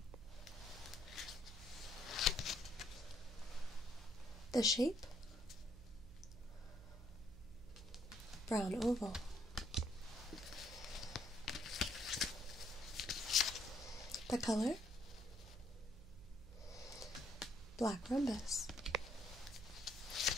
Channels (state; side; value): noise; right; hum, 15 dB below the sound